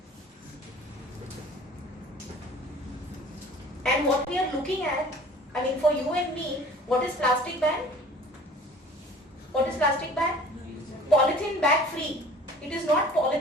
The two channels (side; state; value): both; normal; correlation 0.47